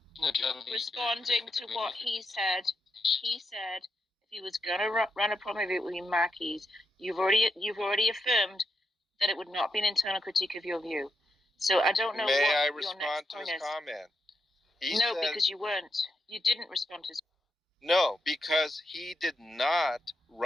No, John, Responding to what he said. He said if he was going to run a promo with Mackies, you've already affirmed that it would not be an internal critique of your view. So I don't know May what I your respond next to point his is. comment? No, because you weren't. You didn't respond to his. No, because he did not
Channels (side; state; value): both; normal; correlation 0.83